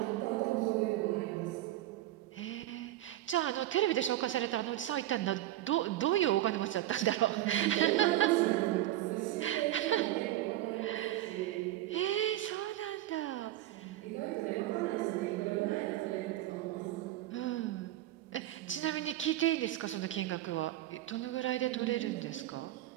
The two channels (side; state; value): left; quieter; 14.3 dB